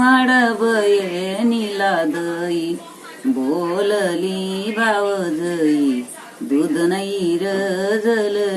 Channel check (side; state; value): both; identical; correlation 1.00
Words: वाढवये नीला दई बोलली भावजई दूध नाही रजल